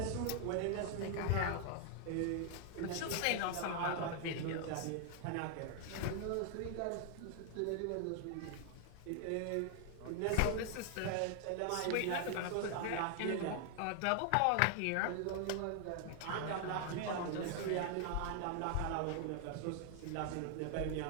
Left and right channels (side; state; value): both; different; correlation 0.00